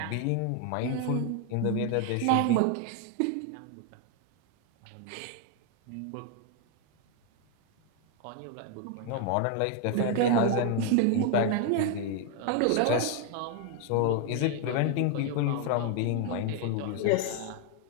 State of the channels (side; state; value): both; different; correlation 0.01